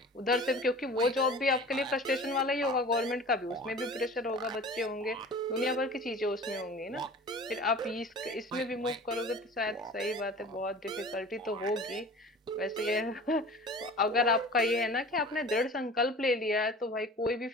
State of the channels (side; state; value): both; normal; correlation 0.41